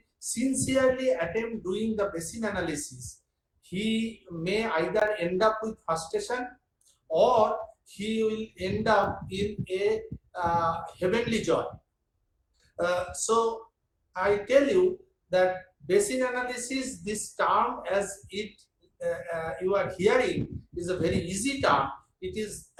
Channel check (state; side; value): identical; both; correlation 1.00